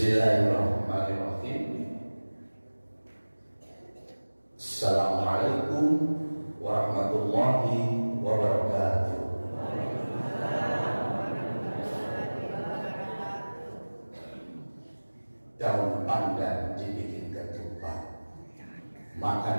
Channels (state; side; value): inverted; both; correlation -1.00